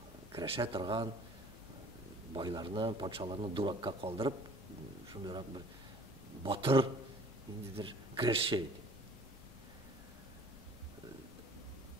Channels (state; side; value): normal; both; correlation 0.50